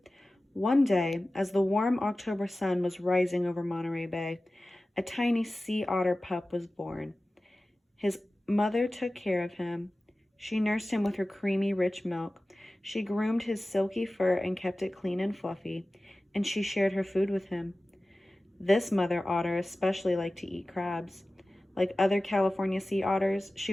One day, as the warm October sun was rising over Monterey Bay, a tiny sea otter pup was born. His mother took care of him. She nursed him with her creamy, rich milk. She groomed his silky fur and kept it clean and fluffy, and she shared her food with him. This mother otter especially liked to eat crabs. Like other California sea otters,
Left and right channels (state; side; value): normal; both; correlation 0.96